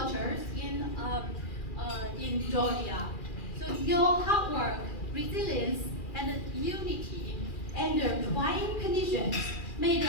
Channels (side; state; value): right; late; 2.4 ms